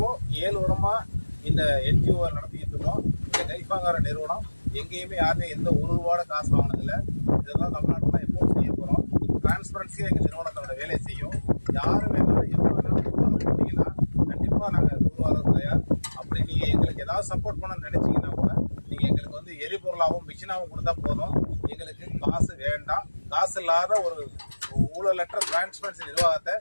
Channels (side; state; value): both; inverted; correlation -1.00